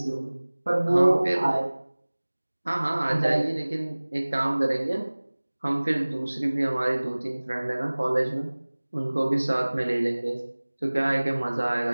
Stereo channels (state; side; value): inverted; both; correlation -1.00